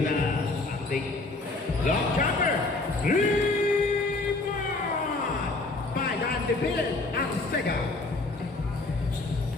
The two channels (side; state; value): right; quieter; 3.3 dB